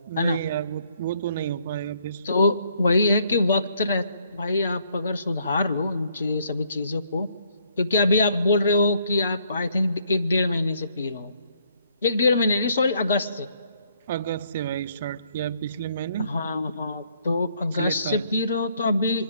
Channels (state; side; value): inverted; both; correlation -0.68